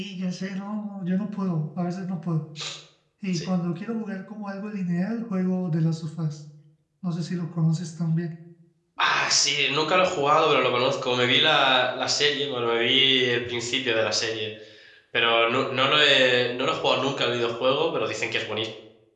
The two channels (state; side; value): identical; both; correlation 1.00